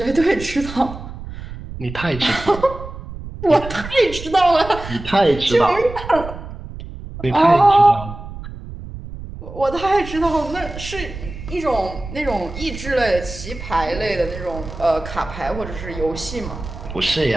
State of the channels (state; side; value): noise; right; rumble, 11 dB below the sound